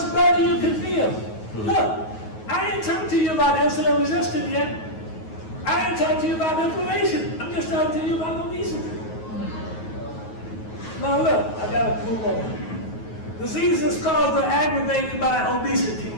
better you can feel. Look, I ain't talking to you about insulin resistance yet. I ain't talking to you about inflammation. I'm just talking to you about obesity. Now look, I gotta move on. Diseases caused or aggravated by obesity.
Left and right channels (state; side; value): late; right; 9.3 ms